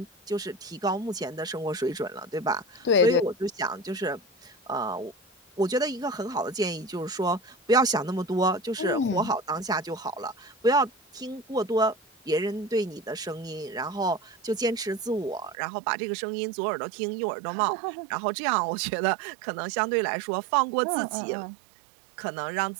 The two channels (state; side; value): drops out; left; at 15.6 s